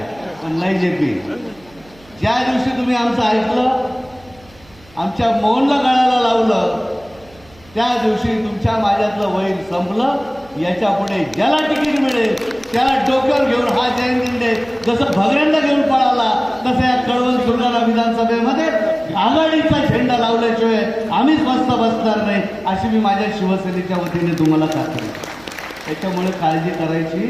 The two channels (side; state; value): right; noise; hum, 26 dB below the sound